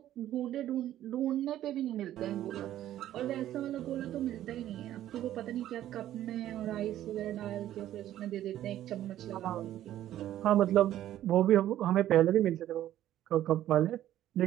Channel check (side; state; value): left; quieter; 12.6 dB